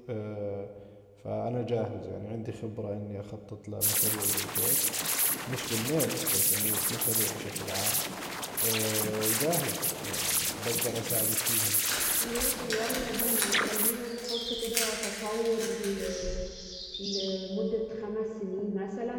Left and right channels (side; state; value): both; identical; correlation 1.00